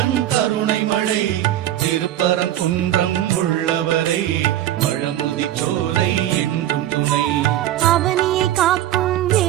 கருணை மழை, திருப்பரங்குன்றம் உள்ளவரை, பழமுதி சோலை என்றும் துணை. அவனியை காக்கும்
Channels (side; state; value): left; quieter; 12.9 dB